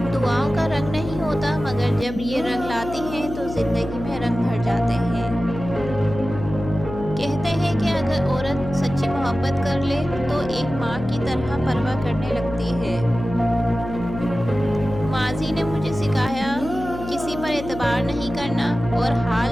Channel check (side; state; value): left; noise; hum, 9 dB below the sound